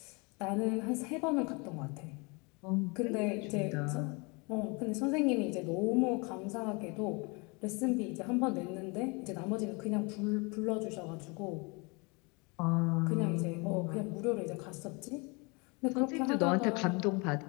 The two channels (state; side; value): quieter; right; 29.7 dB